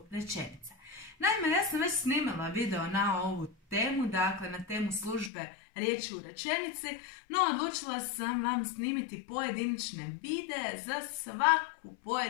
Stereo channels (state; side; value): drops out; right; at 5.3 s